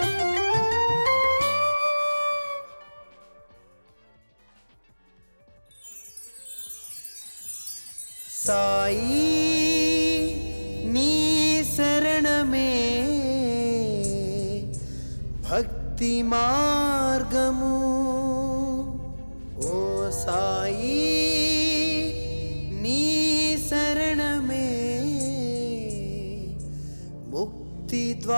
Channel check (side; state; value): both; inverted; correlation -1.00